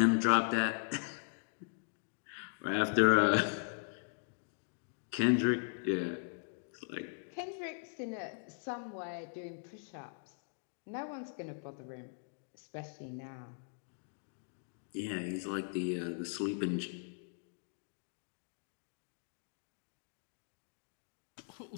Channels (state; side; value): silent; right; digital silence